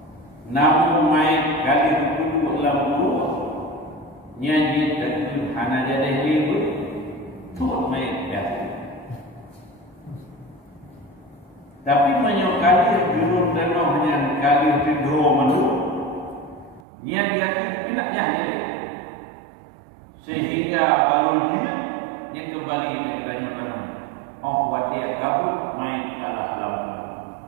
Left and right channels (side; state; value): left; drops out; at 16.8 s